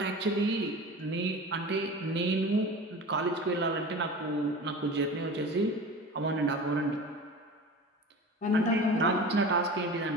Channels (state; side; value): normal; both; correlation 0.34